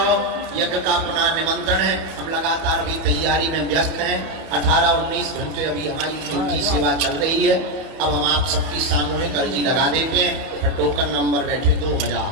यज्ञ का पुनः निमंत्रण है, हम लगातार अभी तैयारी में व्यस्त हैं। 18-19 घंटे अभी हमारी ड्यूटी सेवा चल रही है। अब हम आप सबकी सामूहिक अर्जी लगा देते हैं। टोकन नंबर बैठे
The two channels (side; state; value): left; late; 31 ms